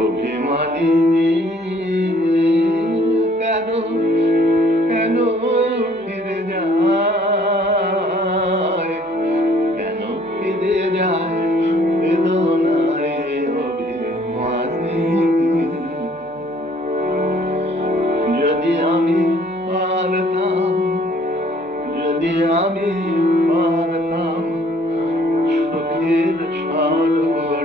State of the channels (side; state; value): both; normal; correlation 0.59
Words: অভিমানী কেন, কেন ফিরে যায়? কেন ফিরে যায় বেদনায় অভিমানী? যদি আমি পারতাম, যদি আমি পারতাম সুখের